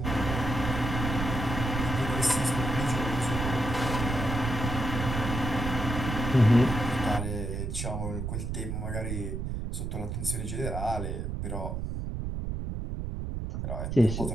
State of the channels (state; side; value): noise; right; rumble, 3 dB below the sound